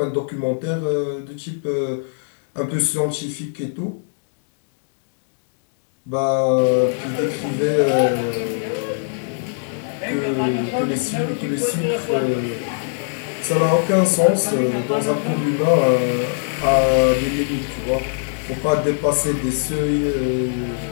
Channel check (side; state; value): right; silent; digital silence